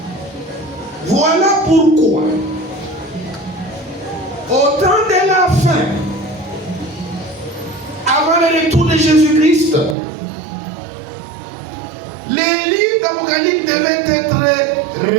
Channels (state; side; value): drops out; left; at 10.0 s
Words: Voilà pourquoi, au temps de la fin, avant le retour de Jésus-Christ, les livres d'Apocalypse devaient être